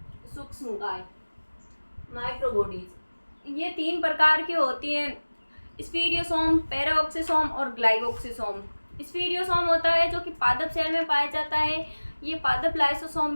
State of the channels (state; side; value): inverted; both; correlation -1.00